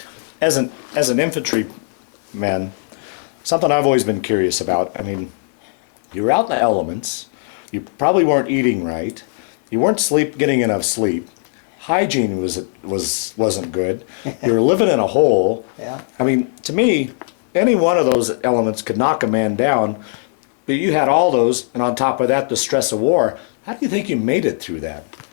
As an infantryman, something I've always been curious about. I mean, you were out in the elements. You probably weren't eating right. You weren't getting enough sleep. Hygiene wasn't good. You were living in a hole. Yeah. I mean, to me, any one of those elements could knock a man down. But you had all those, and on top of that, the stress of war. How do you think you made it through that?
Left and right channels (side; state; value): right; silent; 67 dB below the other